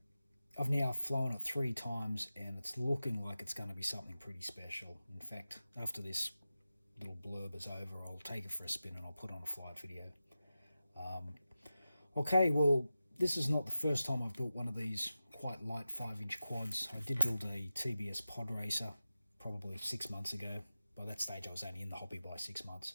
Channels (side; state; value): both; inverted; correlation -0.93